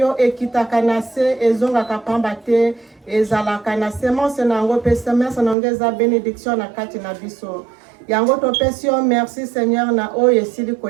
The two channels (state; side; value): drops out; left; at 5.6 s